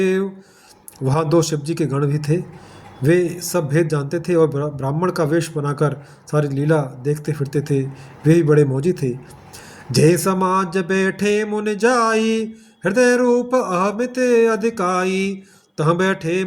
वहाँ दो शिव जी के गण भी थे। वे सब भेद जानते थे और ब्राह्मण का वेश बनाकर सारी लीला देखते फिरते थे। वे ही बड़े मौजी थे। जय समाज बैठे मुनि जाई, हृदय रूप अहमित अधिकाई। तह बैठे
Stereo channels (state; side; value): identical; both; correlation 1.00